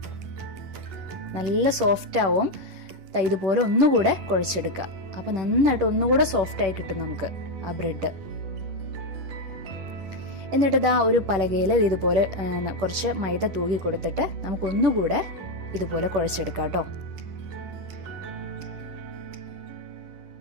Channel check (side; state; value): left; late; 10 ms